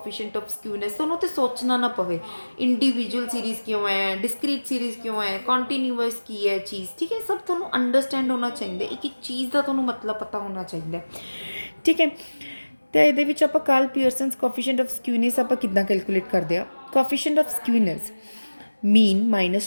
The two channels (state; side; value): inverted; both; correlation -1.00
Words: of skewness, तो उन्होंने सोचना ना पवे। इंडिविजुअल सीरीज़ क्यों है, डिस्क्रीट सीरीज़ क्यों है, कॉन्टीन्यूअस की है चीज़, ठीक है। सब थोनों अंडरस्टैंड होना चाहिए, एक चीज़ का थोनों मतलब पता होना चाहिए, ठीक है। तो ये आप Karl Pearson's coefficient of skewness आप कितना कैलकुलेट करते हैं। Coefficient of skewness mean